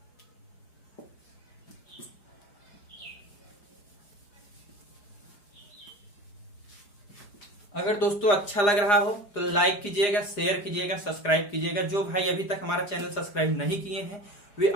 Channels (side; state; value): right; late; 4.9 ms